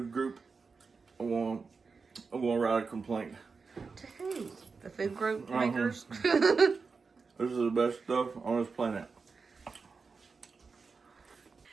group, I'm gonna write a complaint. To who? The food group makers? This is the best stuff on this planet.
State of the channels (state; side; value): quieter; left; 4.8 dB